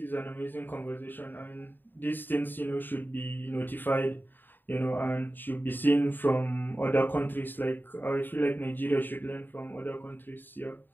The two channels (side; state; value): right; late; 0.092 ms